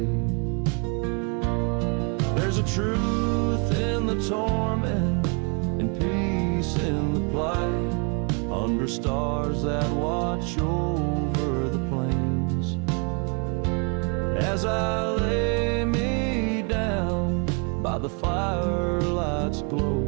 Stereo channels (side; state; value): left; quieter; 34.8 dB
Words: There's a truth in the torment and peace in the plight, under stars that watch over the plains. As I lay me down by the firelight's